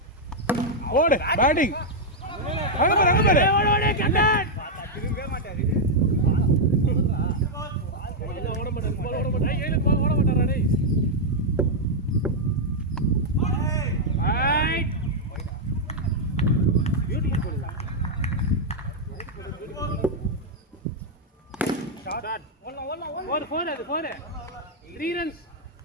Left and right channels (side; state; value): both; normal; correlation -0.02